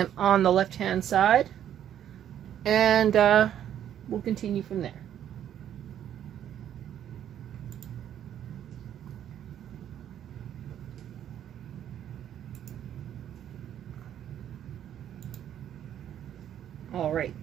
on the left-hand side, and we'll continue from there. All right,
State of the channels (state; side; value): quieter; left; 10.3 dB